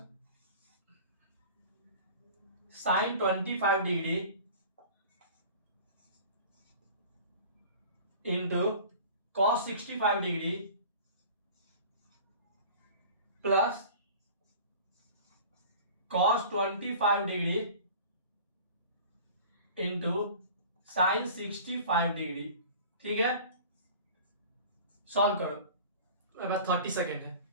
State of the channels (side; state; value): both; inverted; correlation -0.42